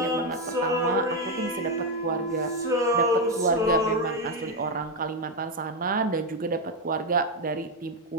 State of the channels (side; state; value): both; normal; correlation 0.06